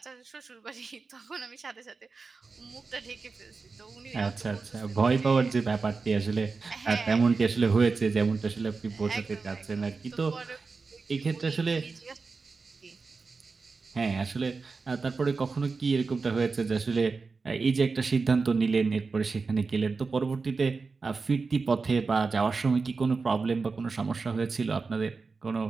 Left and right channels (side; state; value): left; quieter; 4.4 dB